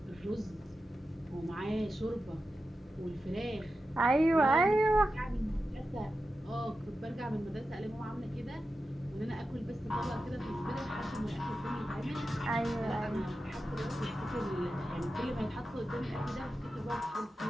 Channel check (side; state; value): both; normal; correlation 0.91